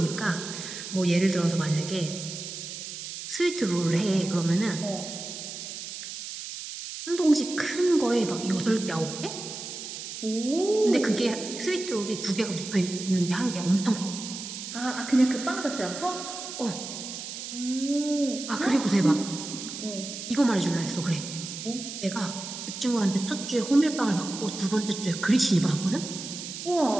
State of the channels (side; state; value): right; noise; hiss, 9 dB below the sound